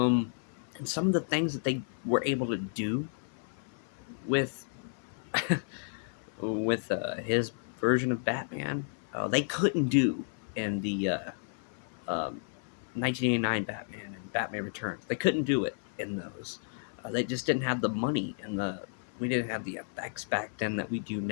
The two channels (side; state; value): right; silent; 56 dB below the other